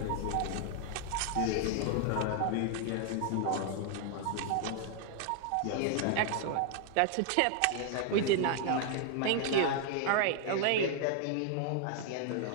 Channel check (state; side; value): different; both; correlation 0.00